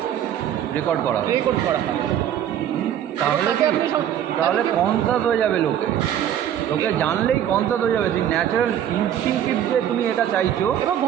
রেকর্ড করা হবে। তাহলে কনসাস হয়ে যাবে লোকে জানলেই কনসাস হয়ে যাবে। সেই ন্যাচারাল ইনস্টিংক্টিভ যে তুমি এটা চাইছো এবং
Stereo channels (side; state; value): left; quieter; 10.3 dB